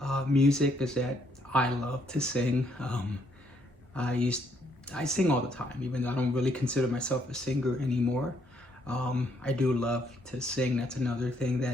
music is that I love to sing. I sing all the time, even though I don't really consider myself a singer anymore. I do love to sing. That's another thing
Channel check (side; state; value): both; normal; correlation 0.70